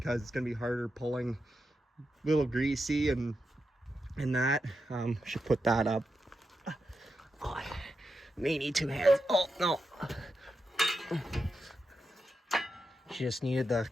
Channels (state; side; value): normal; both; correlation 0.87